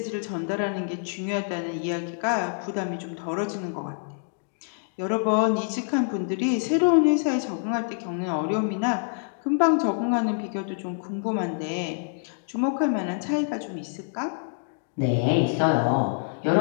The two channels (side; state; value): right; silent; digital silence